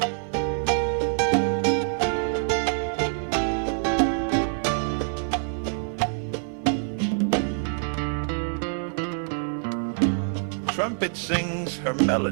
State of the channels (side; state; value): left; silent; digital silence